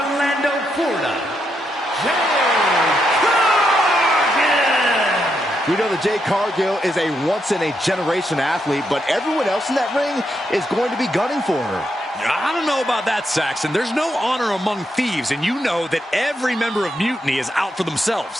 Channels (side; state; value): both; normal; correlation 0.81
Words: Florida, Jade Cargill! We know that Jade Cargill is a once-in-a-generation athlete, but everyone else in that ring is going to be gunning for her. I don't know about that, Saxon. There's no honor among thieves, and you know that every member of Mutiny is out for